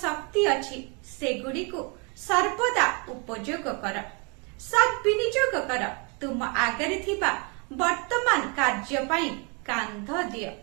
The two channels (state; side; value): quieter; left; 33.2 dB